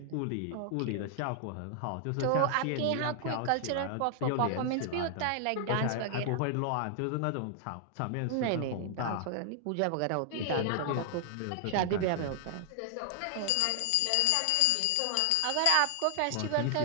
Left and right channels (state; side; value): different; both; correlation 0.00